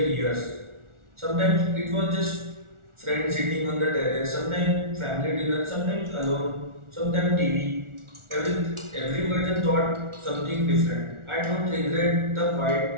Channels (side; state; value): left; late; 1.4 ms